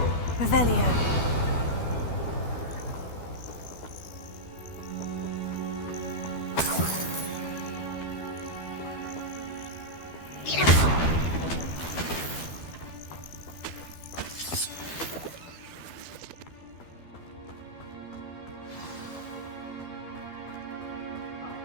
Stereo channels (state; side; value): late; right; 12 ms